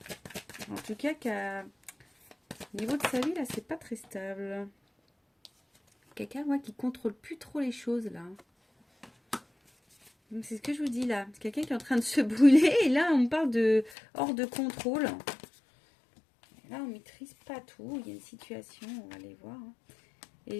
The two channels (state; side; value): drops out; right; at 14.0 s